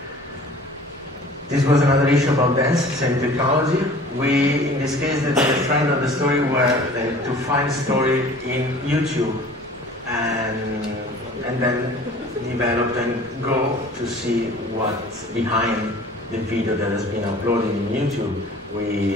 This was another issue about dance, same technology. We, in this case, the trend of the story were to find story in YouTube and then develop and go to see what's behind the video that has been uploaded in YouTube.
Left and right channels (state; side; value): normal; both; correlation 0.46